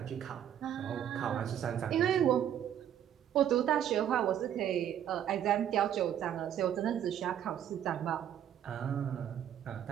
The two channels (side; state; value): left; quieter; 10.1 dB